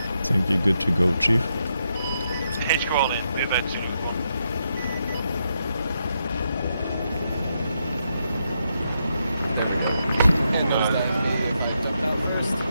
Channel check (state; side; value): inverted; both; correlation -0.82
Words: Think you're good to go, Chief? HQ all in, we're about Zulu